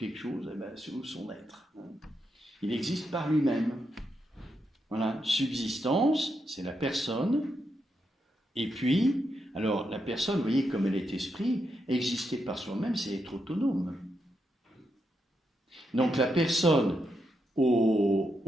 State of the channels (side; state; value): both; normal; correlation 0.83